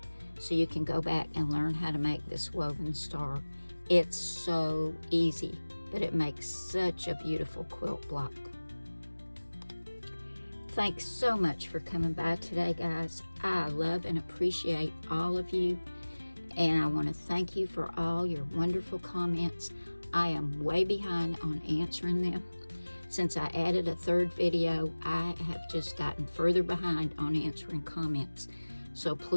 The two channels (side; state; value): both; inverted; correlation -1.00